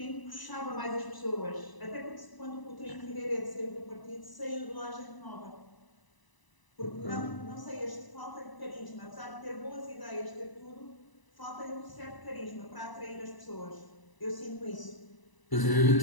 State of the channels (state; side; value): late; right; 1.0 ms